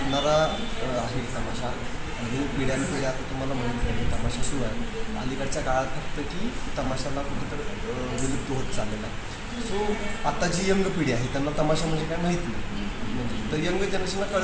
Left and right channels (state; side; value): identical; both; correlation 1.00